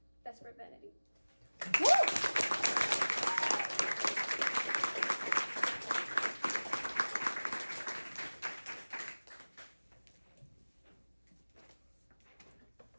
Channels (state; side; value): inverted; both; correlation -1.00